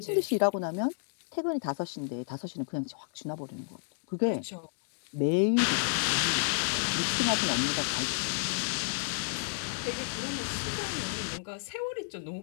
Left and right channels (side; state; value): right; silent; digital silence